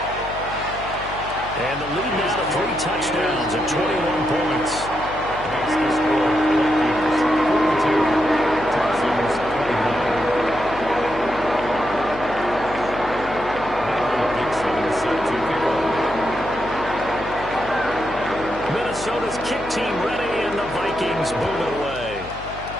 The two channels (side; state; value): left; noise; hum, 14 dB below the sound